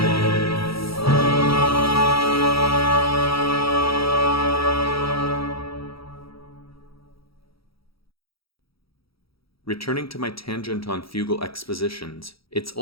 Returning to my tangent on fugal expositions, it's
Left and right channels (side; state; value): right; late; 0.76 ms